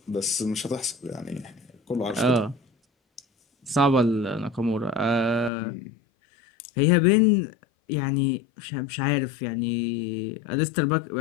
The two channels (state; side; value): drops out; right; at 5.5 s